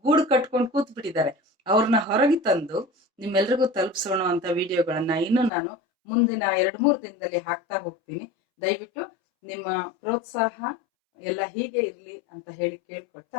ಗೂಡು ಕಟ್ಕೊಂಡು ಕೂತ್ ಬಿಟ್ಟಿದ್ದಾರೆ. ಅವ್ರನ್ನ ಹೊರಗೆ ತಂದು ನಿಮ್ಮೆಲ್ರಿಗೂ ತಲುಪಿಸೋಣ ಅಂತ ವಿಡಿಯೋಗಳನ್ನ ಇನ್ನು ನಾನು ಮುಂದಿನ 2-3 ದಿನದಲ್ಲಿ ಹಾಕ್ತಾ ಹೋಗ್ತೀನಿ. ದಯವಿಟ್ಟು ನಿಮ್ಮ ಪ್ರೋತ್ಸಾಹ ಎಲ್ಲ ಹೀಗೆ ಇರ್ಲಿ ಅಂತ ಹೇಳಿ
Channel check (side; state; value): right; drops out; at 5.5 s